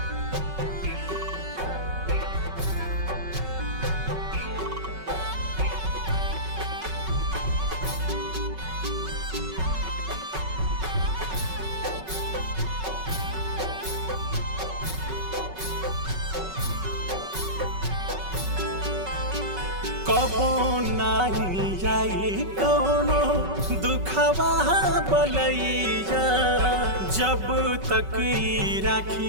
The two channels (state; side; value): late; left; 5.3 ms